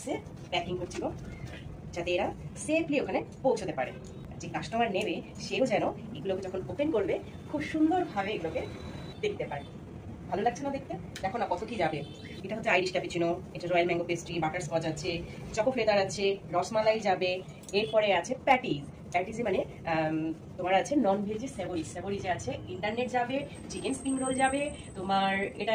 প্যাকিং করছিল, যাতে এরা সেফলি ওখানে পৌঁছতে পারে। যে কাস্টমার নেবে সেও যেন এগুলোকে যখন ওপেন করবে খুব সুন্দরভাবে এগুলোকে দেখতে পারে। ভালো লাগছে না দেখতে? দেখো না কত কি যাবে। এটা হচ্ছে আইরিশ ক্যাপুচিনো, এটা royal mango pastry, butter Scotch আছে, চকো ফ্লেভার আছে, রসমালাই যাবে, এরপরে আছে প্যাটিস মানে তোমার আছে নন ভেজি সেভরি যে আছে, ইন্টারনেট যাবে, চিকেন স্প্রিং রোল যাবে, তোমার এটা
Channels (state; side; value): identical; both; correlation 1.00